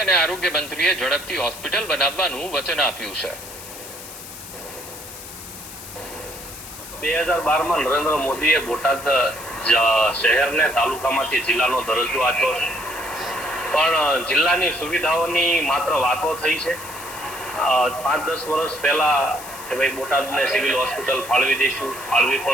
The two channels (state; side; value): noise; left; hiss, 13 dB below the sound